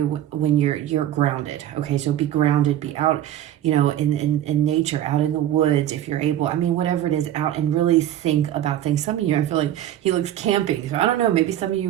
when you're grounded. Okay, so be grounded, be out, in nature, out in the woods if you're able. I mean, whatever it is, out and really think about things. Some of you, I feel like he looks camping. So I don't know, maybe some of you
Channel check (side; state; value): left; quieter; 12.0 dB